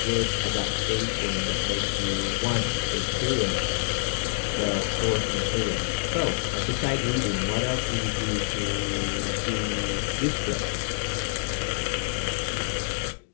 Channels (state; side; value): silent; right; digital silence